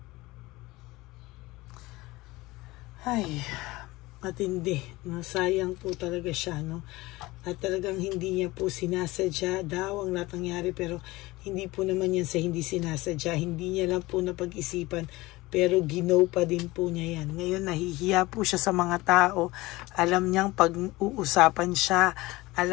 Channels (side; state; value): right; quieter; 20.3 dB